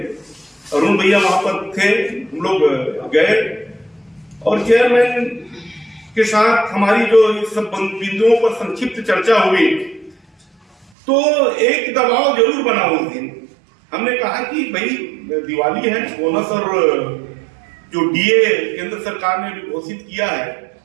अरुण भैया वहां पर थे, हम लोग गए और चेयरमैन के साथ हमारी जो इस सब बिंदुओं पर संक्षिप्त चर्चा हुई तो एक दबाव जरूर बना उस दिन। हमने कहा कि भाई दिवाली है, बोनस और जो डीए केंद्र सरकार ने भी घोषित किया है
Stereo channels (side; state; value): left; drops out; at 10.9 s